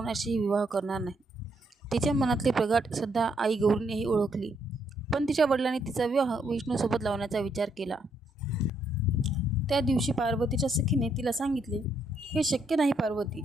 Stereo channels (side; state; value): both; normal; correlation 0.74